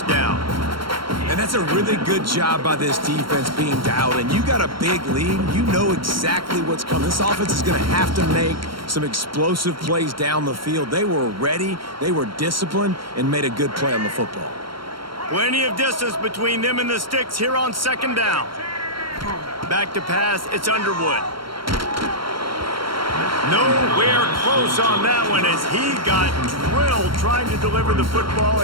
down. And that's a really good job by this defense being dialed in. You got a big lead. You know exactly what's coming. This offense is going to have to make some explosive plays down the field. They were ready, they were disciplined, and made a good play on the football. Plenty of distance between them and the sticks here on 2nd down. Back to pass, it's Underwood. Nowhere close on that one as he got drilled trying to deliver the football,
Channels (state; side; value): late; left; 0.73 ms